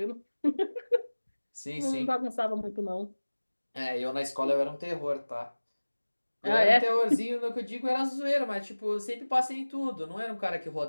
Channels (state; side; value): inverted; both; correlation -1.00